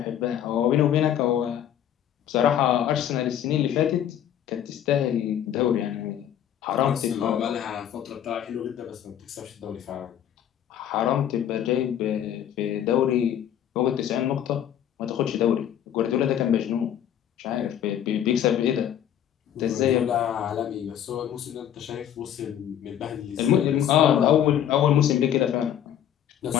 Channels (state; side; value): quieter; right; 10.3 dB